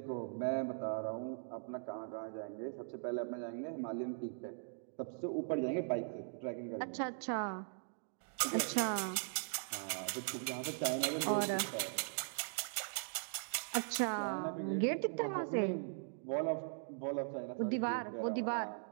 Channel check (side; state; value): left; silent; digital silence